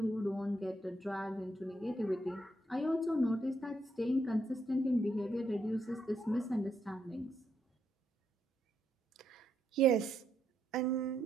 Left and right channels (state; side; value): normal; both; correlation 0.77